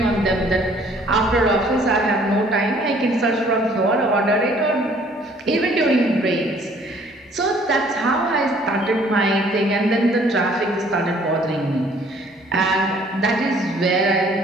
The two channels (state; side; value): normal; both; correlation 0.58